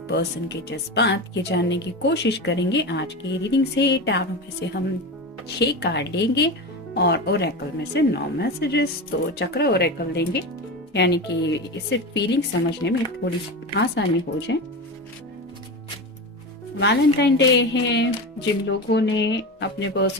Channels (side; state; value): both; normal; correlation 0.23